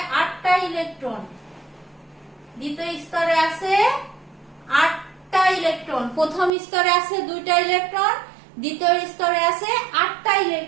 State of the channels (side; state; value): left; drops out; at 6.5 s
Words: 8টা ইলেকট্রন। দ্বিতীয় স্তরে আছে 8টা ইলেকট্রন, প্রথম স্তরে আছে 2টা ইলেকট্রন, দ্বিতীয় স্তরে আছে 8টা